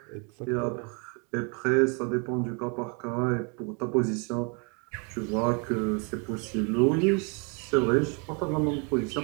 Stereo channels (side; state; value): left; quieter; 34.8 dB